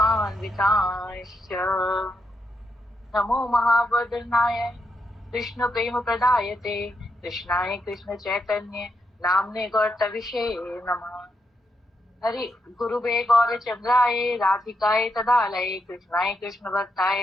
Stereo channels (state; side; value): normal; both; correlation 0.82